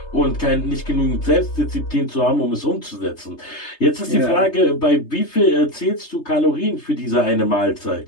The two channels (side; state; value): right; late; 3.3 ms